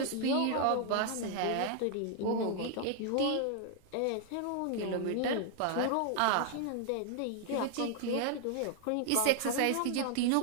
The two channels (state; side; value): different; both; correlation 0.00